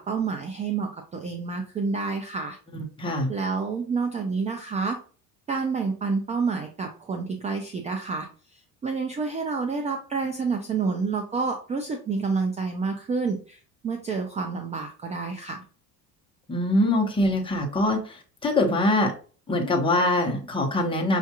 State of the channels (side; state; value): both; normal; correlation 0.44